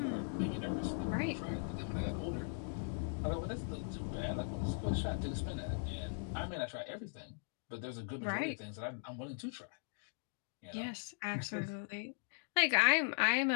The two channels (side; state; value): right; silent; digital silence